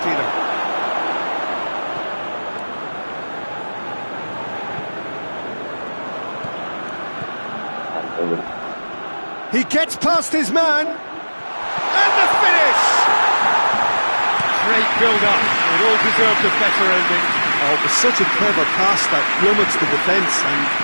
He gets past his man. And the finish! Great build-up. It all deserved a better ending. Oh, it was such a clever pass that plummets the defence, and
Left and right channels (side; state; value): both; inverted; correlation -1.00